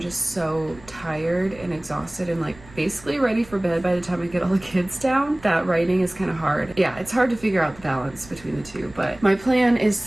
just so tired and exhausted and like basically ready for bed by the time I get all the kids down that writing is kind of hard. Yeah, it's hard to figure out the balance between the two, but my plan is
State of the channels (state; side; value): noise; right; rumble, 21 dB below the sound